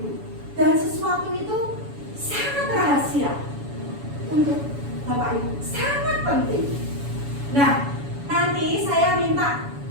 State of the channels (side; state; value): left; late; 7.1 ms